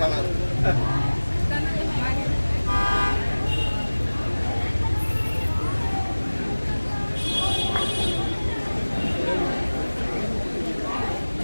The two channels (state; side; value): inverted; both; correlation -1.00